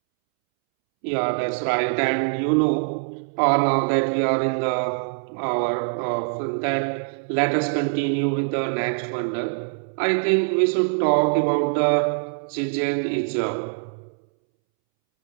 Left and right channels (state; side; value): silent; left; 63 dB below the other